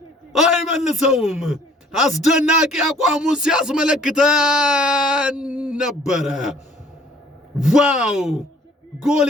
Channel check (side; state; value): both; normal; correlation 0.56